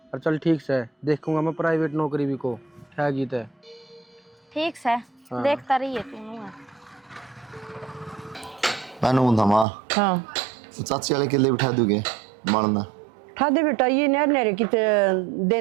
और चल ठीक से देखूंगा मैं प्राइवेट नौकरी भी को क्या गीत है। ठीक से हाँ। देखता रहिए तू है। मैंने बोला माँ हाँ चाची वाले के लिए बिठा दोगे मारना। ठादे बेटा ये नहर नहरे की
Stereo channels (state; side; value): drops out; left; at 9.7 s